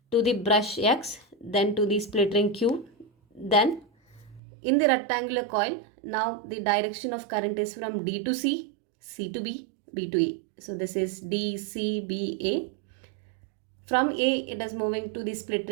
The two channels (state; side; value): drops out; left; at 4.4 s